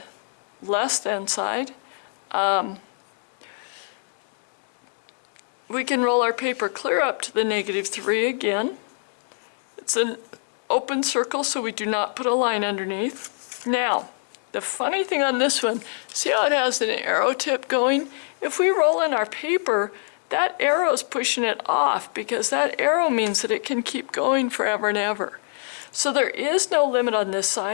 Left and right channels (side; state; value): right; silent; digital silence